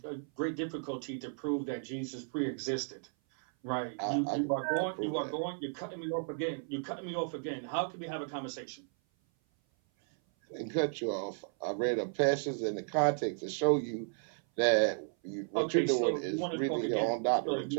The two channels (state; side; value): silent; left; 55 dB below the other